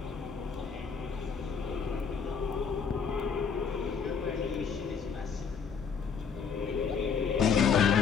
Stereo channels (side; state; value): right; quieter; 6.2 dB